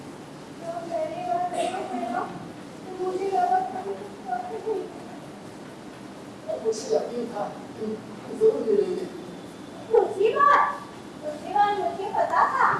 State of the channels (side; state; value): both; identical; correlation 1.00